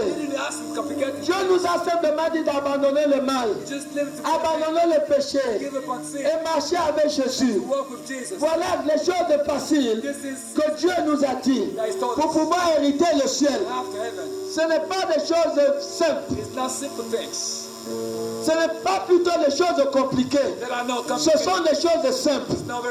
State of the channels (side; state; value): both; identical; correlation 1.00